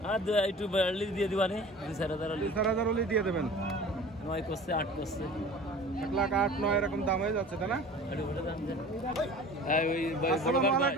আর একটু দিয়ে দিবানি 2,000 হলে দিয়ে দেবেন। 9 করছে, 8 করছে। 1,08,000 এরকম দাম হয়ে যাচ্ছে তাই না? আসসালামু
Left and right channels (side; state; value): both; normal; correlation 0.42